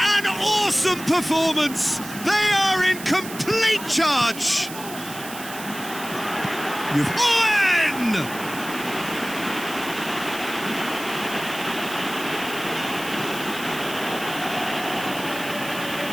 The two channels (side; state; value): right; noise; hiss, 12 dB below the sound